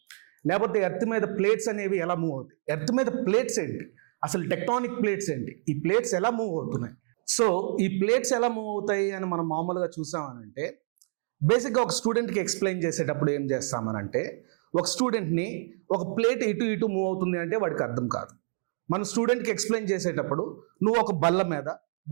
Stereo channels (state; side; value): silent; left; digital silence